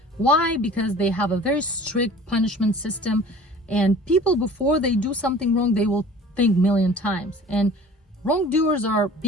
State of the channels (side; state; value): both; normal; correlation 0.45